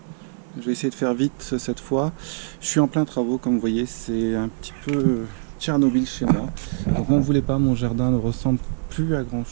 Je vais essayer de faire vite cette fois. Je suis en plein travaux, comme vous voyez, c'est un petit peu Tchernobyl chez moi. Donc n'en voulez pas, mon jardin ne ressemble plus à grand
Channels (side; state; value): left; silent; digital silence